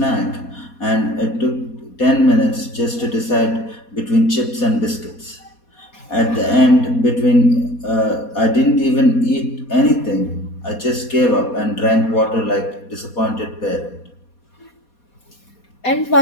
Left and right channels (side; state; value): right; late; 4.2 ms